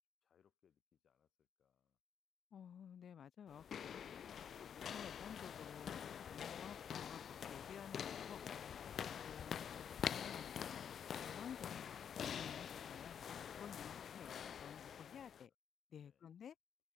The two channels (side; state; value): right; quieter; 8.1 dB